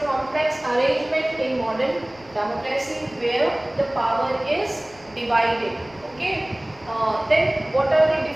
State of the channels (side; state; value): left; noise; rumble, 26 dB below the sound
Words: complex arrangement in modern democracy where the power is divided. Okay. Then what are the